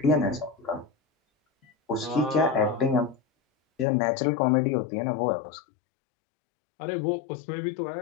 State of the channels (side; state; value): right; drops out; at 3.9 s